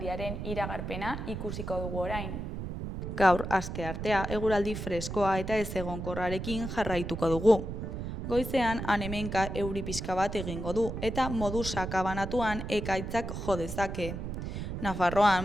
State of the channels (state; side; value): noise; right; rumble, 5 dB below the sound